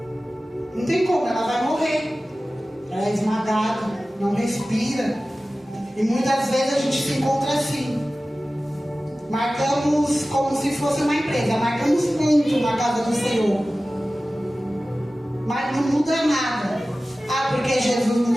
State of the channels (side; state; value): both; normal; correlation 0.96